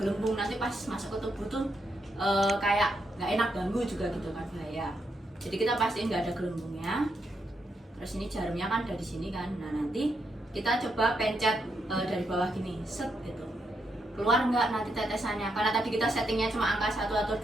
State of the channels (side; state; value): both; normal; correlation 0.80